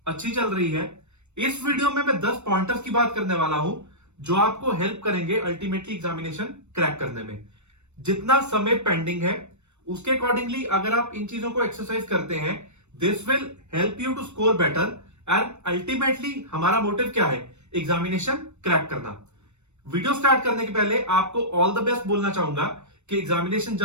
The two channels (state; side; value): late; left; 0.82 ms